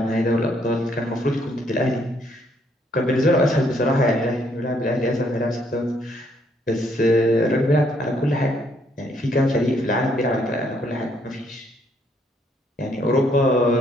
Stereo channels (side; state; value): both; normal; correlation 0.69